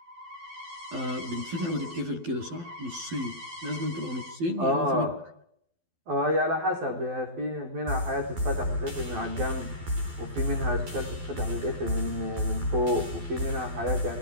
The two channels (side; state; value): left; late; 12 ms